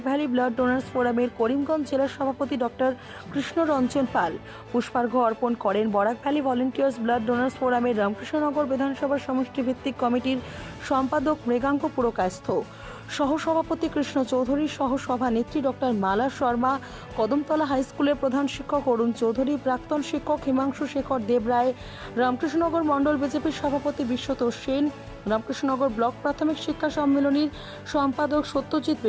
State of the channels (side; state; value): both; identical; correlation 1.00